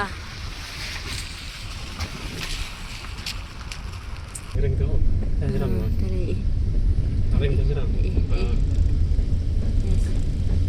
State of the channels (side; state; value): both; identical; correlation 1.00